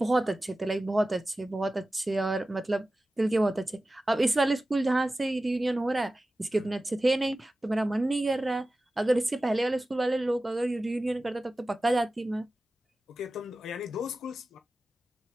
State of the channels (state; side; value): normal; both; correlation 0.95